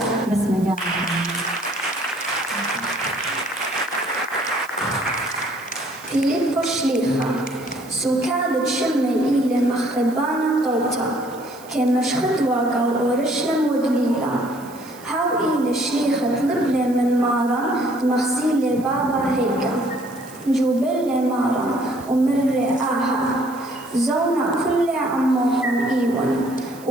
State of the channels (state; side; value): noise; right; hiss, 22 dB below the sound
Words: بس مجان فيليبو شليخة سو كانت شمة إلى مخبانا طوطا كما شخدوا قو أورشلم ودليلا هاو إلى شليخة طلب من مارا مغسيل بابا هيكا جوبل مارا ومر آها زونا كل عموهم إيوان